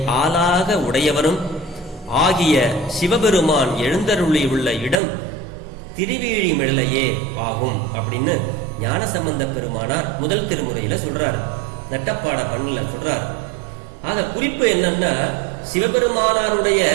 ஆளாக உடையவரும் ஆகிய சிவபெருமான் எழுந்தருளி உள்ள இடம் திருவேழிமிழலையே ஆகும் அப்படின்னு ஞானசம்பந்த பெருமானார் முதல் திருமுறையில சொல்றாரு, நட்டப்பாட பண்ணல சொல்றாரு. ஆக குறிப்பு என்னன்னா, சிவபெருமானாருடைய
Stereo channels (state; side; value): drops out; left; at 5.0 s